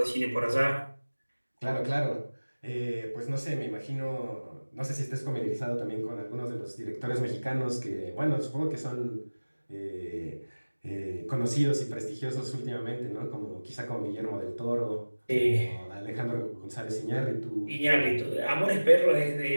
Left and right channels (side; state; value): both; inverted; correlation -1.00